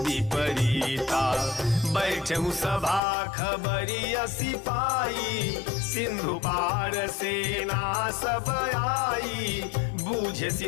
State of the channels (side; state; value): right; drops out; at 3.0 s